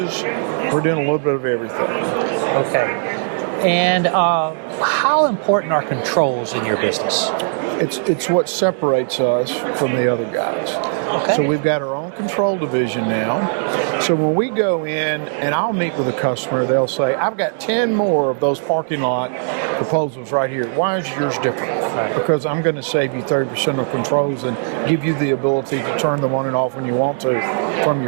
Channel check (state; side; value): silent; left; 67 dB below the other